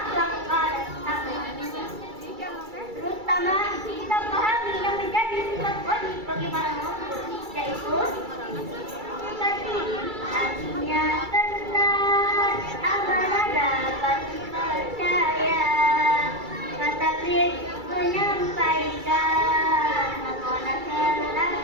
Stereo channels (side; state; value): left; late; 2.3 ms